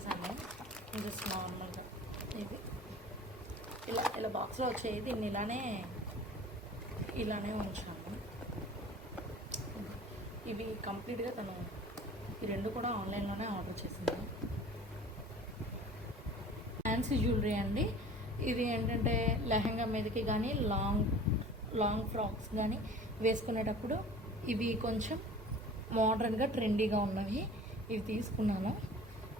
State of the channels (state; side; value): normal; both; correlation 0.43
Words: జస్ట్ నార్మల్గా. ఇది ఇలా ఇలా బాక్స్లో వచ్చేది, దీన్ని ఇలానే ఉంచాను. ఇవి కంప్లీట్గా తను ఈ రెండు కూడా ఆన్లైన్లోనే ఆర్డర్ చేసింది. ఫ్యాన్సీ జ్యువెలరీ అండి. ఇది ఏంటంటే లెహంగా మీదకి కానీ లాంగ్ ఫ్రాక్స్ కానీ వేసుకునేటప్పుడు ఇవి కొంచెం మోడర్న్గా ట్రెండీగా ఉన్నవి ఇవి తీసుకున్నాను.